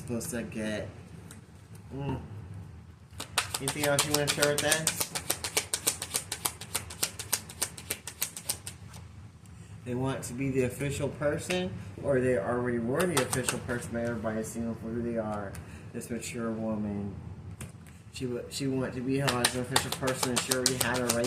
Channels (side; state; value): both; identical; correlation 1.00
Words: to get. Anything else you want to share with us? They want to be the official person, or they already were the official person, but everybody's seeing them for who they are. This mature woman. She wanted to be held as an official person, and she already had her